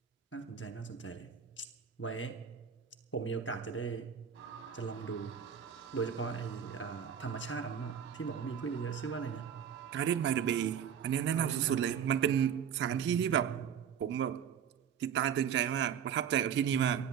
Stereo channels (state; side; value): quieter; left; 8.1 dB